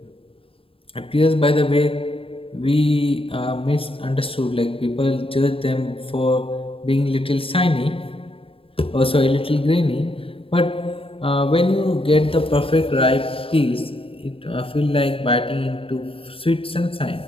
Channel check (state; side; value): late; right; 0.27 ms